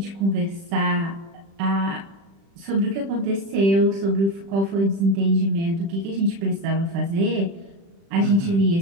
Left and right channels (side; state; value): left; late; 36 ms